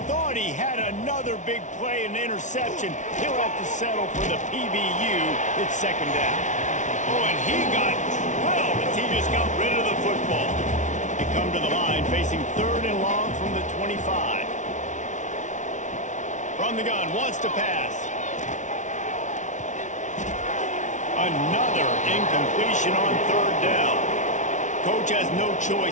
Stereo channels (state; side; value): late; right; 0.36 ms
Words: Thought he had another big play and interception. He'll have to settle for the PBU. It's second down. Oh, and he got drilled as he just got rid of the football. They come to the line facing third and long from the 25. From the gun, wants to pass. Another incompletion on third down. Coach has no